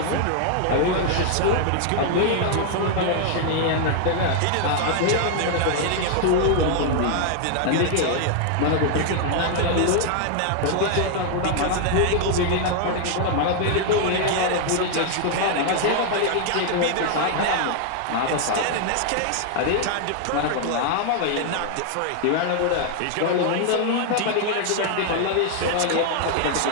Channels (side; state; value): both; different; correlation 0.00